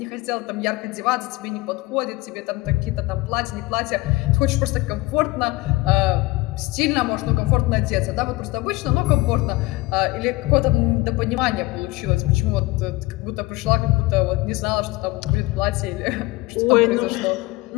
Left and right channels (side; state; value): right; quieter; 20.9 dB